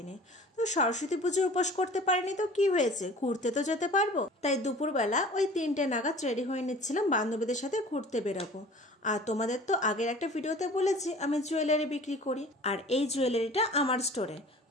তো সরস্বতী পুজোর উপোস করতে পারিনি তো কি হয়েছে, ঘুরতে তো যেতে পারবো। তাই দুপুরবেলা ওই 3টে নাগাদ রেডি হয়ে নিচ্ছিলাম, বান্ধবীদের সাথে ঘুরতে বেরোবো। আর তোমাদের তো আগের একটা ভিডিওতে বলেছি আমি জুয়েলারি বিক্রি করি, আর এই জুয়েলারিটা আমার স্টোরে।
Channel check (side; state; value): both; normal; correlation 0.44